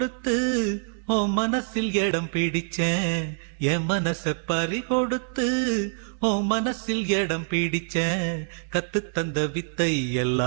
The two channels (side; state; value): left; silent; digital silence